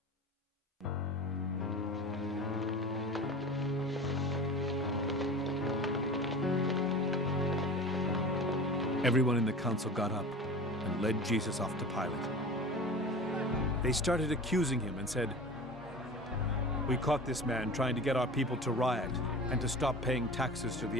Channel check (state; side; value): normal; both; correlation 0.35